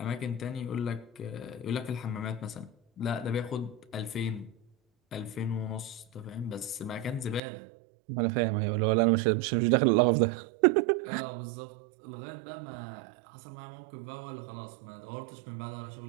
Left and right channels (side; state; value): left; drops out; at 7.4 s